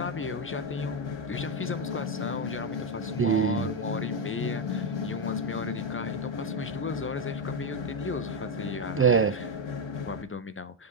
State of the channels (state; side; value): normal; both; correlation 0.06